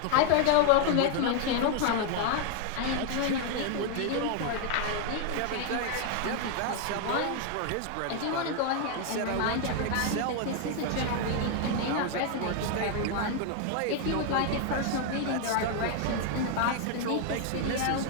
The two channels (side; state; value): both; different; correlation 0.00